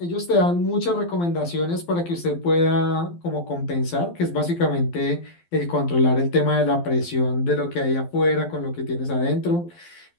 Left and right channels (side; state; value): right; late; 12 ms